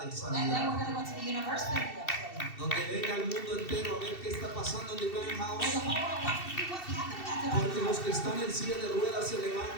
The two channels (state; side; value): late; right; 2.7 ms